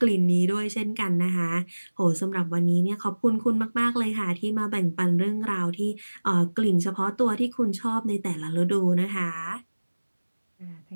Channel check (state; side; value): inverted; both; correlation -1.00